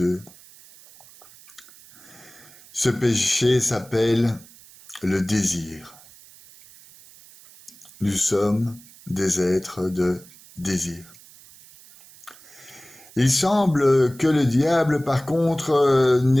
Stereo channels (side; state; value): right; noise; hiss, 23 dB below the sound